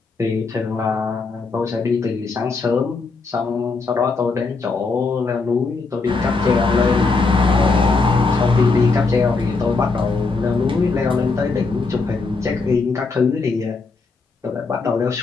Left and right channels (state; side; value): quieter; right; 4.1 dB